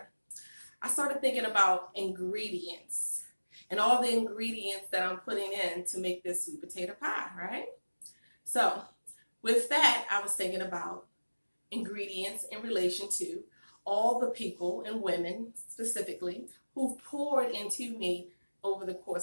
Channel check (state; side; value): inverted; both; correlation -1.00